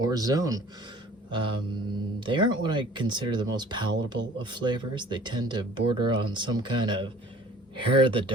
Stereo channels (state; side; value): normal; both; correlation 0.49